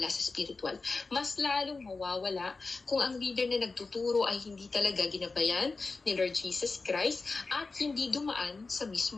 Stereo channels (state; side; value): quieter; right; 3.9 dB